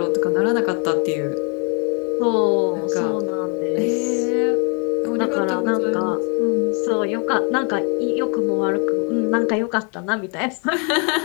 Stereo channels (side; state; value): right; quieter; 36.5 dB